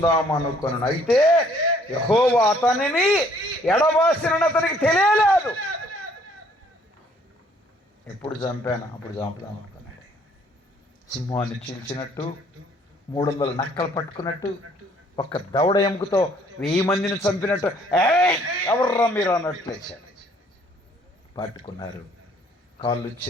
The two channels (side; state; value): both; normal; correlation 0.62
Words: అయితే యెహోవా అతనిని ఎడబాసినని అతనికి తెలియలేదు. ఎప్పుడు చంపాను అప్పుడు చంపుదాం అనుకున్నాడు. సింహాన్ని చీల్చినట్టు, 300 నక్కలు పట్టుకున్నట్టు, ఒక్క దవడ ఎముకతో 1000 మందిని చంపినట్టు ఎవర్రా మీరు అన్నట్లు లేచాడు. పట్టుకున్నారు, కాళ్ళు